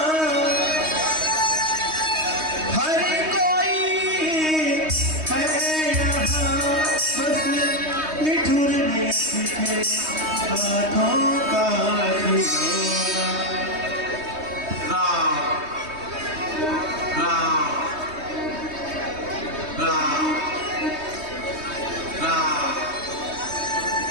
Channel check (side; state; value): left; late; 3.2 ms